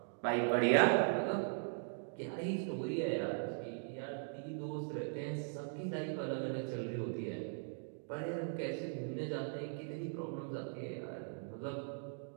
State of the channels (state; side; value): silent; left; digital silence